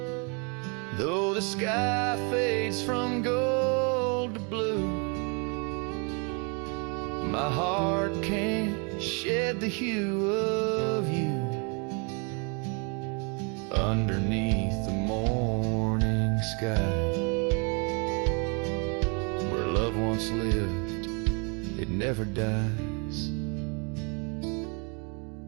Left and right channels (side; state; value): left; quieter; 34.5 dB